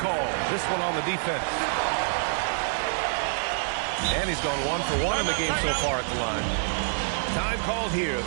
This one on the defense. And he's gone 1 for 1 in the game so far at the line. Time called here.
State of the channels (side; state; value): left; silent; 60 dB below the other